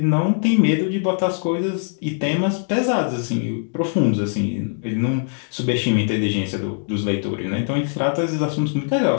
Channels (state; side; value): silent; right; digital silence